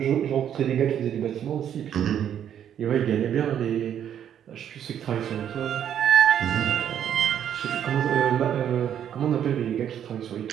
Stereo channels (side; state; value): left; quieter; 9.6 dB